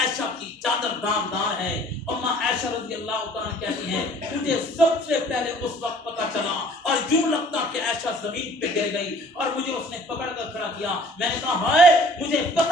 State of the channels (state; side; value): normal; both; correlation 0.52